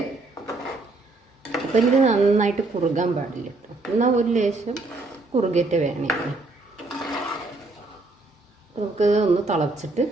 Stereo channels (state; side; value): quieter; left; 3.2 dB